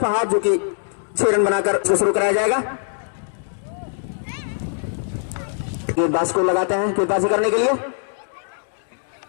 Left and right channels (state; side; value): silent; right; digital silence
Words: फहाद जो कि 6 रन बनाकर शुरू कराया जाएगा। गेंदबाज को लगाते हैं गेंदबाजी करने के लिए